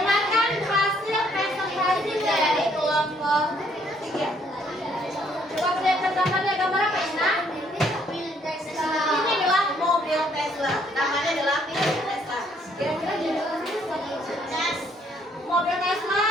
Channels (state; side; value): normal; both; correlation 0.67